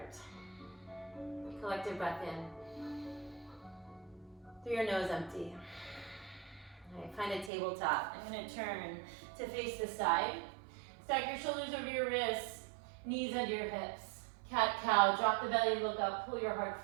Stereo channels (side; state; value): left; drops out; at 7.5 s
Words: Collective breath in. Through your nose, empty. Alright, find a tabletop. I'm going to turn to face the side. Stack your shoulders over your wrists, knees under your hips. Cat-cow, drop the belly, look up, pull your